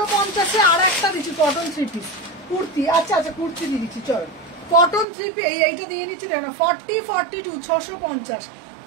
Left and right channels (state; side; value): drops out; left; at 5.1 s